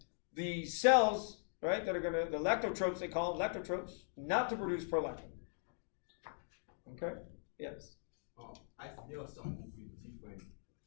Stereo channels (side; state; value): right; silent; digital silence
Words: the cells, right, that are going to, the lactotropes, they call them lactotropes, not to produce prolactin. Okay? Yes. There are some with different